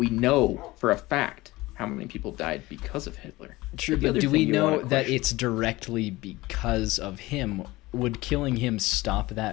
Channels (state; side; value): quieter; right; 19.8 dB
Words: know for a fact how many people died because of Hitler. True, The but other do we thing you wanna know that question- it's directly because of him? Would killing him stop